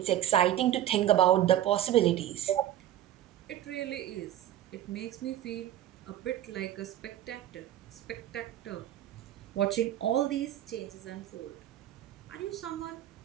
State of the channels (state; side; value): quieter; left; 12.4 dB